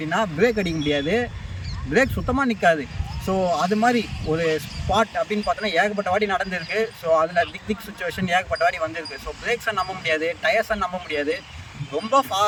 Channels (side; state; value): both; identical; correlation 1.00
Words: பிரேக் அடிக்க முடியாது, பிரேக் சுத்தமாக நிற்காது. ஸோ அது மாதிரி ஒரு ஸ்பாட் அப்படின்னு பார்த்தோன்னா ஏகப்பட்ட வாட்டி நடந்திருக்கு. ஸோ அதில் திக் சுச்சுவேஷன் ஏகப்பட்ட வாட்டி வந்திருக்கு. ஸோ பிரேக்ஸை நம்ப முடியாது, டயர்ஸை நம்ப முடியாது. ரொம்ப